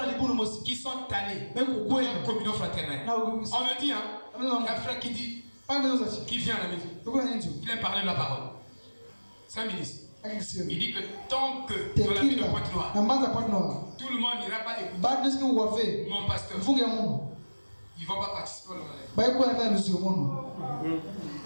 qui sont allés pour une communion fraternelle. On me dit, il y a un frère qui dit, qui vient à la maison, il vient parler de la parole. C'est un ministre. Il dit que tant que dans la ville de Pointe-Noire, tout le monde n'ira pas écouter mon pasteur, ils ne vont pas participer au monde.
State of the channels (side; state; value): both; inverted; correlation -1.00